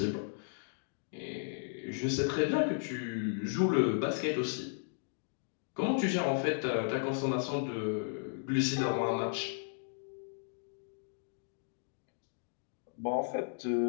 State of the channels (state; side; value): silent; right; digital silence